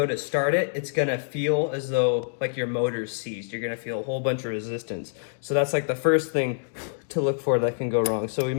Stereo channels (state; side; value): silent; right; digital silence